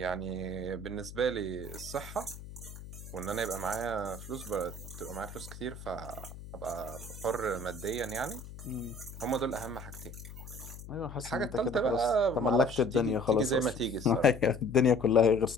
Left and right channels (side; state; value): left; noise; hum, 13 dB below the sound